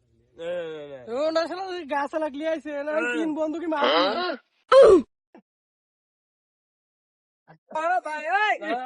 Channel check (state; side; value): identical; both; correlation 1.00